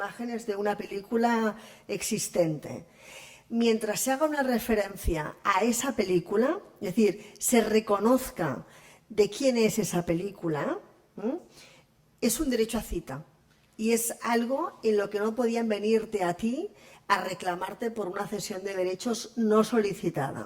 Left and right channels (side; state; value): both; identical; correlation 1.00